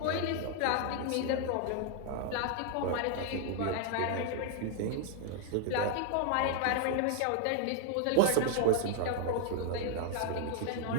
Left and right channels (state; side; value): different; both; correlation 0.00